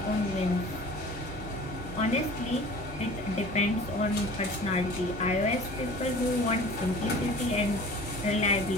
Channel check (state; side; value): normal; both; correlation 0.43